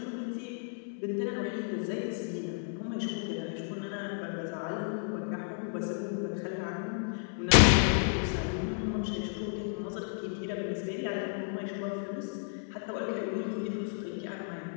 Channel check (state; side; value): silent; right; 56 dB below the other